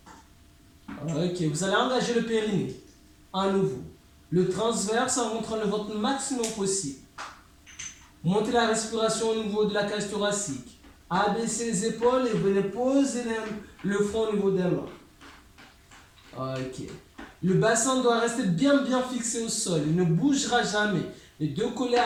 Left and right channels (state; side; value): identical; both; correlation 1.00